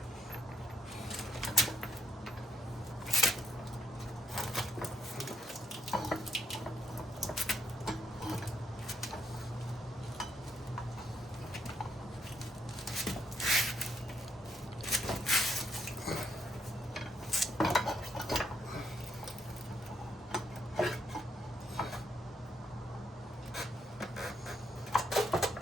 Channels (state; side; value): normal; both; correlation 0.76